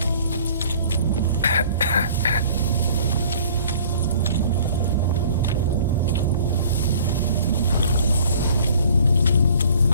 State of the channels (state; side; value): inverted; both; correlation -0.52